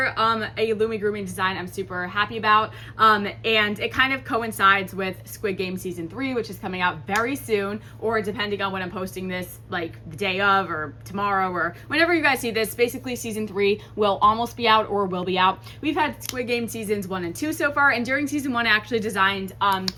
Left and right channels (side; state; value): both; identical; correlation 1.00